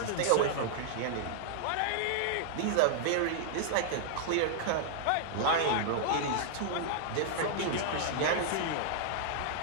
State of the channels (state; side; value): different; both; correlation -0.01